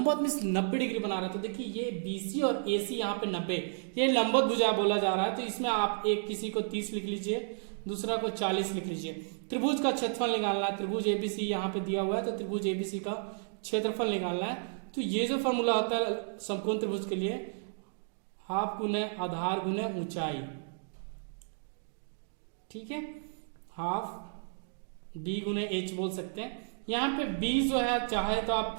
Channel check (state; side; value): silent; left; digital silence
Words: मींस 90 डिग्री बना रहा है, तो देखिए ये BC और AC यहाँ पे 90, ये लंबवत भुजा बोला जा रहा है। तो इसमें आप एक किसी को 30 लिख लीजिए, दूसरा को 40 लिख लीजिए। त्रिभुज का क्षेत्रफल निकालना है, त्रिभुज ABC यहाँ पे दिया हुआ है, तो त्रिभुज ABC का क्षेत्रफल निकालना है। तो ये जो फॉर्मूला होता है समकोण त्रिभुज के लिए, हाफ गुने आधार गुने ऊंचाई, ठीक है, हाफ B गुने H बोल सकते हैं। यहाँ पे B जो है चाहे तो आप